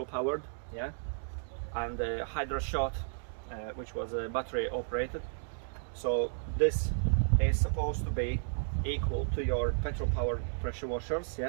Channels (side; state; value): left; silent; digital silence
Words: powered, yeah, and Hydra Shot, which was battery operated. So this is supposed to be equal to your petrol powered pressure washers.